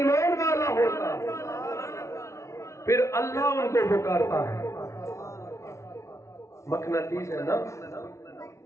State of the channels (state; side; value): late; right; 0.14 ms